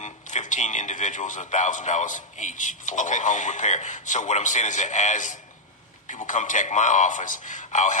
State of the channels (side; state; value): both; normal; correlation -0.05